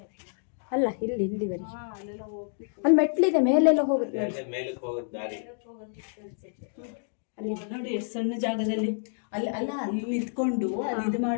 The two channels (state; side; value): silent; right; digital silence